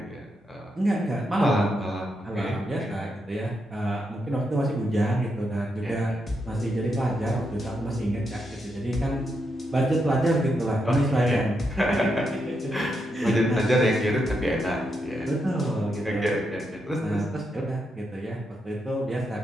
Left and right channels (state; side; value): normal; both; correlation 0.82